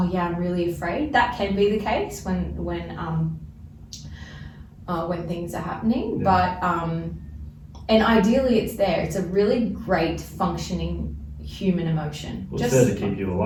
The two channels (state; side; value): identical; both; correlation 1.00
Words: yeah, I'm really afraid. That can be the case when things are happening, but and ideally it's there. It's a really great functioning human emotion. Well, it's there to keep you